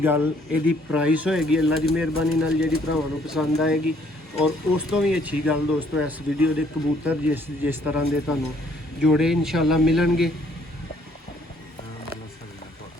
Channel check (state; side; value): normal; both; correlation 0.64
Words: गल यदि प्राइस होएगी अल्लाह की मेहरबानी नाल जिहड़ी भरावां नूं पसंद आएगी। और उस तो भी अच्छी गल दोस्तों इस वीडियो के कबूतर जिस तरह के तुहानूं जोड़े इंशाअल्लाह मिलणगे।